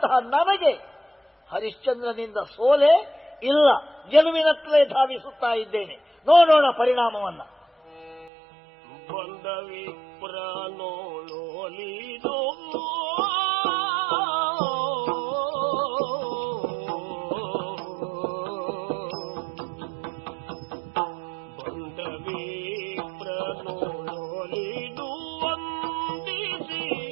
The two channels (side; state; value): left; drops out; at 8.3 s